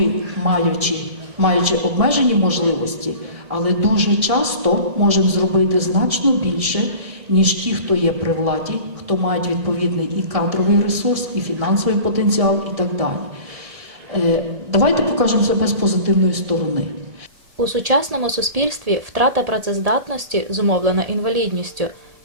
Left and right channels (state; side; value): late; left; 1.7 ms